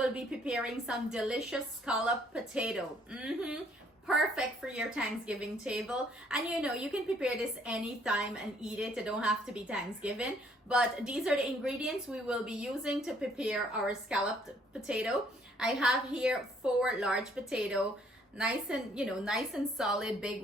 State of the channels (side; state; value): both; normal; correlation 0.64